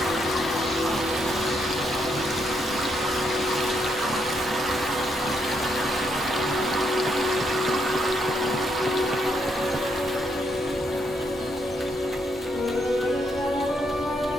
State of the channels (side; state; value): both; normal; correlation 0.76